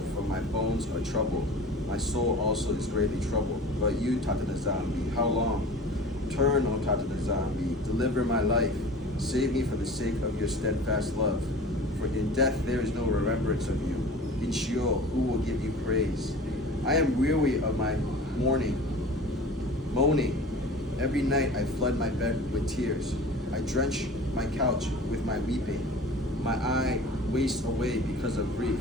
for my bones are troubled. My soul also is greatly troubled. But you, Tata Nzambi, how long? Turn, O Tata Nzambi, deliver my life. Save me for the sake of your steadfast love. For in death there is no remembrance of you. In Sheol, who will give you praise? I am weary of my mourning. Every night I flood my bed with tears. I drench my couch with my weeping. My eye wastes away because of grief.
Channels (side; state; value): both; normal; correlation 0.40